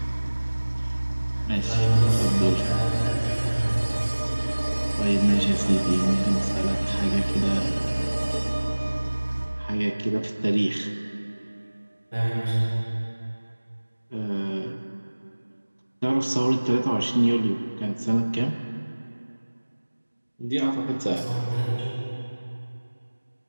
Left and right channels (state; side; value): inverted; both; correlation -1.00